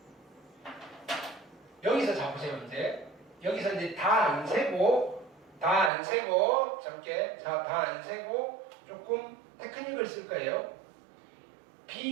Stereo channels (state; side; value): drops out; left; at 5.9 s